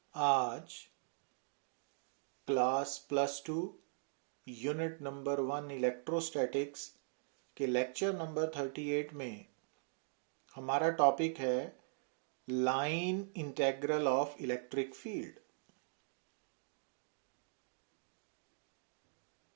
आज class +2 unit number 1 electrostatics के lecture number 38 में हमारा टॉपिक है line integral of electric field.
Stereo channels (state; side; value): silent; left; digital silence